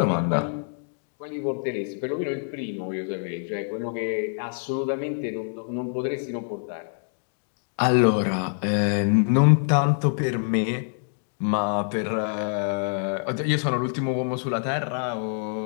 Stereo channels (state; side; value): silent; right; digital silence